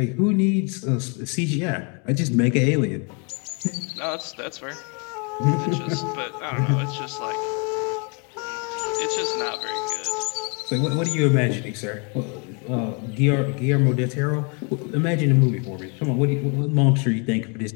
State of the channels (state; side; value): quieter; right; 35.8 dB